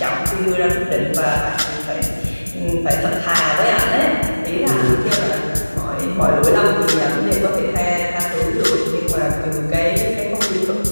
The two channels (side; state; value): both; inverted; correlation -1.00